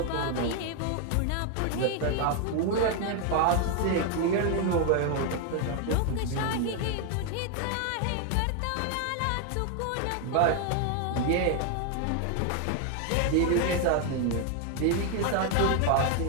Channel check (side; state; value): both; different; correlation 0.01